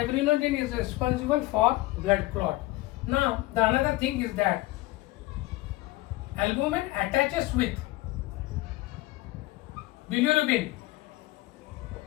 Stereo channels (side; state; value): right; quieter; 19.1 dB